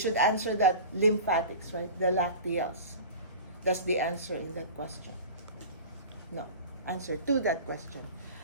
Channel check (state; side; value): inverted; both; correlation -0.36